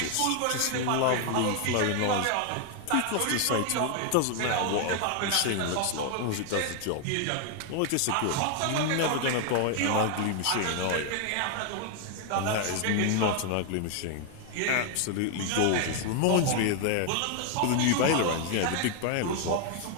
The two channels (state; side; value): different; both; correlation 0.00